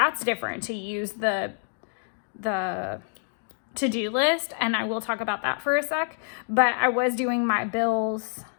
different to use the to-do list, and I will talk about that for a sec. But I was doing my bills.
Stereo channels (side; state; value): right; silent; digital silence